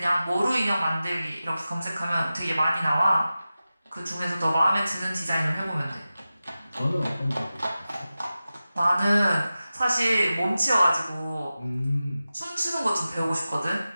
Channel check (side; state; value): both; inverted; correlation -0.95